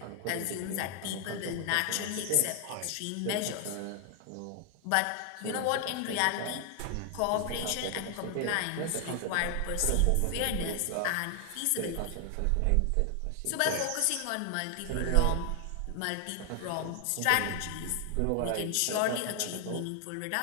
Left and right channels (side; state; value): both; different; correlation 0.00